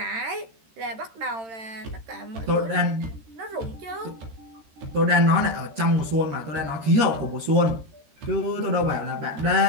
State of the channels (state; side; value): late; left; 13 ms